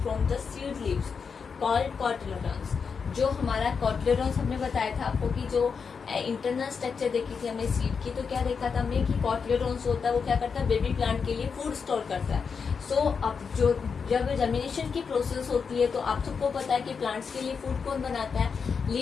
from the seed leaves called cotyledons. जो हमारा कॉटिलेडॉन्स हमने बताया था आपको कि जो इंटरनल स्ट्रक्चर देखी थी हमने सीड की, तो क्या देखा था हमने कि कॉटिलेडॉन्स होता है वो क्या करता है, बेबी प्लांट के लिए फूड स्टोर करता है. सो अब जो जब जर्मिनेशन की प्रोसेस होती है तो आप सबको पता है कि प्लांट्स के लिए फूड कौन बनाता है,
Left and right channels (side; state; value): right; quieter; 5.8 dB